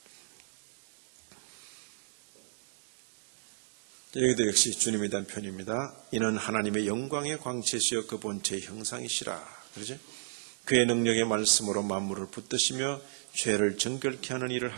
여기도 역시 주님에 대한 표현입니다. 이는 하나님의 영광의 광채시여 그 본체의 형상이시라. 그러죠? 그의 능력의 말씀으로 만물을 붙드시며 죄를 정결케 하는 일을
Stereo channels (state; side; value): silent; left; digital silence